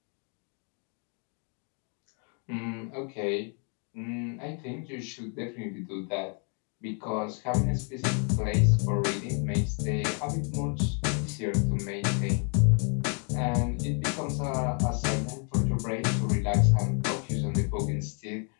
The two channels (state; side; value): quieter; right; 39.6 dB